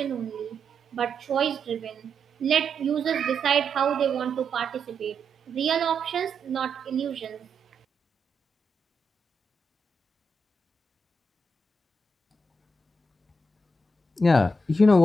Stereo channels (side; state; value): both; normal; correlation 0.83